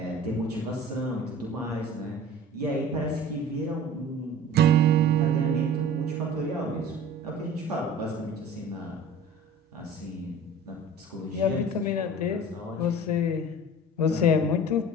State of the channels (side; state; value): both; normal; correlation 0.41